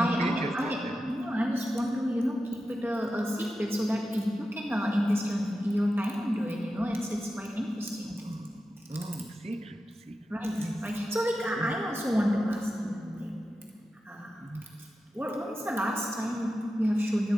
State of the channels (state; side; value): normal; both; correlation 0.91